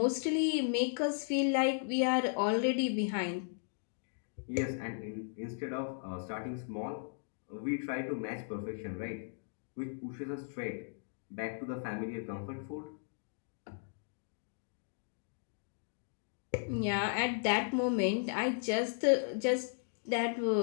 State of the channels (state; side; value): silent; right; digital silence